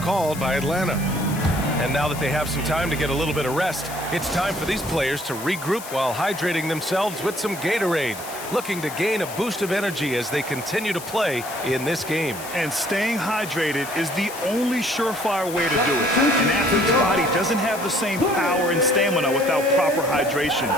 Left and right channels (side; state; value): left; noise; hiss, 12 dB below the sound